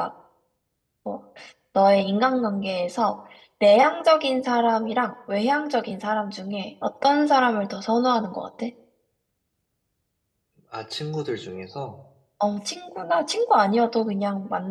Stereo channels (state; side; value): identical; both; correlation 1.00